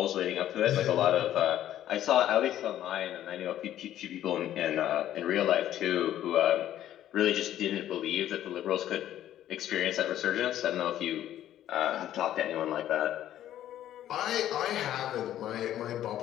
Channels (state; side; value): quieter; right; 12.1 dB